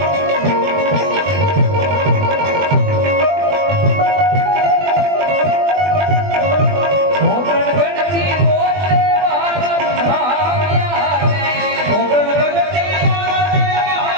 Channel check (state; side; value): late; left; 20 ms